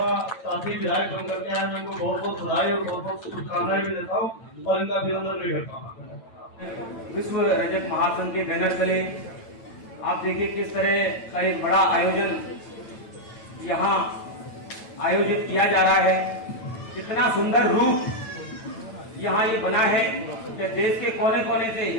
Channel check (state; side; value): late; right; 9.0 ms